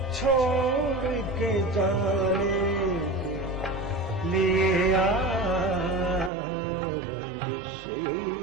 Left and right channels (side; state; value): left; drops out; at 6.3 s